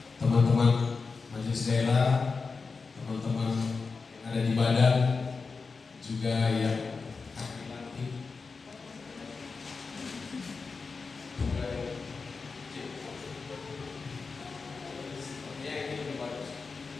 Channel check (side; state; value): right; quieter; 4.6 dB